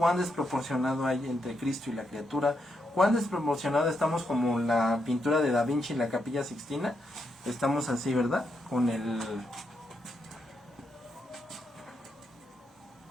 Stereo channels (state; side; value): normal; both; correlation 0.81